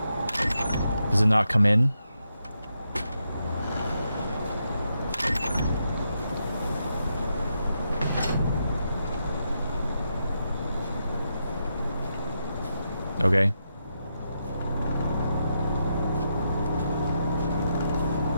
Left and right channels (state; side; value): inverted; both; correlation -0.83